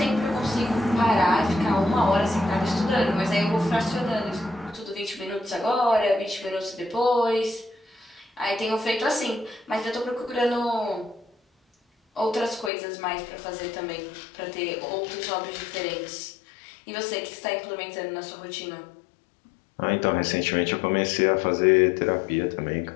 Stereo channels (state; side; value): drops out; right; at 12.7 s